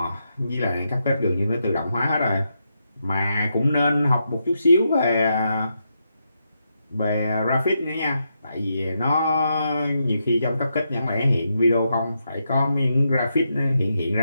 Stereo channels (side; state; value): both; inverted; correlation -0.83